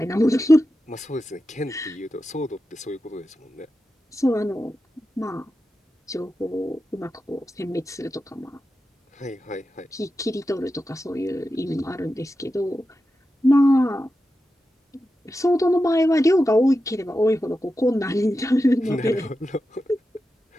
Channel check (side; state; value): both; normal; correlation 0.91